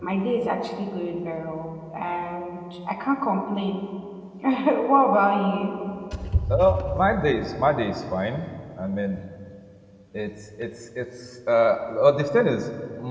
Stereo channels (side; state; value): both; identical; correlation 1.00